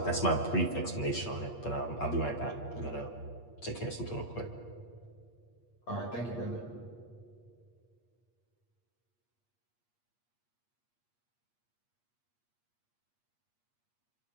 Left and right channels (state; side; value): late; right; 8.5 ms